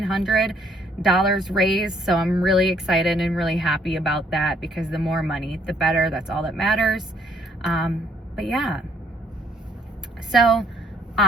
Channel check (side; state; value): both; normal; correlation 0.65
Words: raised. So I'm really excited and really happy about that, because the more money, the better. That's all that matters. But yeah. So